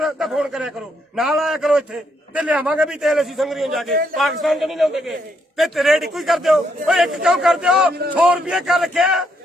ਤਾਂ ਫੋਨ ਕਰਿਆ ਕਰੋ, ਨਾਲ ਆਇਆ ਕਰੋ ਇੱਥੇ ਤੇ ਲਿਆਵਾਂਗੇ ਵੀ ਤੇਲ ਅਸੀਂ ਸੰਗਰੀਆਂ ਜਾ ਕੇ। ਪਾਕਿਸਤਾਨ ਤੋਂ ਨਹੀਂ ਲਿਆਉਂਦੇ ਤੇ ਰੇਟ ਇੱਕੋ ਹੀ ਕਰ ਦਿਓ। ਓਏ ਇੱਕ ਕਿਉਂ ਕਰ ਦਿਓ? 100 ਰੁਪਏ ਕਰ ਰੱਖਿਆ,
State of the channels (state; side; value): normal; both; correlation 0.75